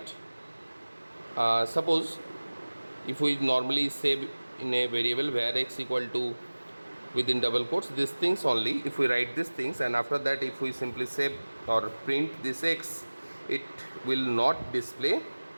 suppose if we normally say in a variable where x equal to within double quotes these things only, if we write these things, and after that if we simply save or print this x, it will not display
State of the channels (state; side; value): inverted; both; correlation -1.00